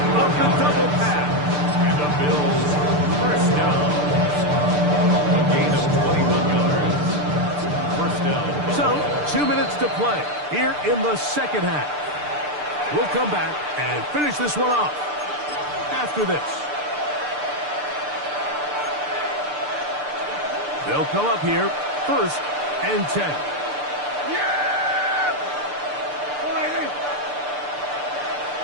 of the double pass. And the Bills first down. A gain of 21 yards. First down. So, 2 minutes to play here in the second half. We'll come back and finish this one off after this. They'll come up here, 1st and 10. Yeah!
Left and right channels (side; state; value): left; late; 6.8 ms